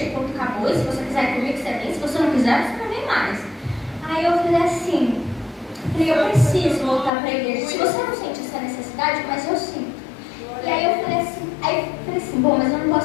o ponto acabou, e se você quiser ir comigo, você vem, se você não quiser, você não vem mais. Aí eu falei assim, eu preciso voltar para a igreja. Se você não sente essa necessidade, mas eu sinto. E aí eu falei assim, bom, mas eu não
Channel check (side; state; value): right; drops out; at 7.1 s